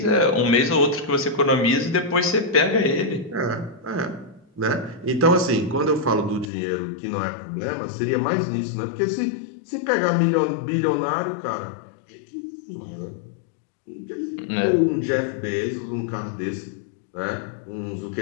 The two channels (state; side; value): drops out; right; at 6.5 s